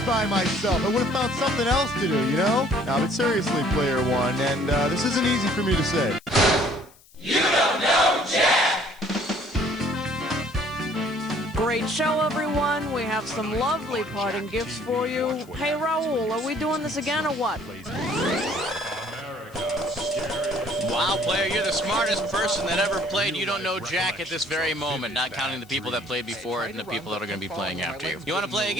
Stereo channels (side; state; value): left; noise; hiss, 27 dB below the sound